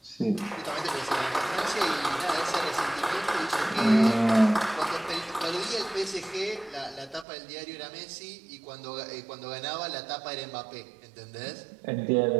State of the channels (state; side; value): drops out; left; at 7.2 s